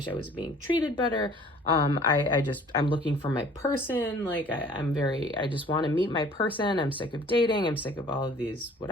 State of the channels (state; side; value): normal; both; correlation 0.52